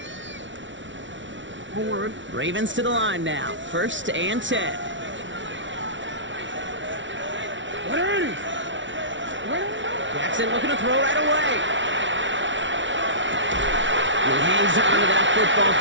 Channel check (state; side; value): late; left; 0.55 ms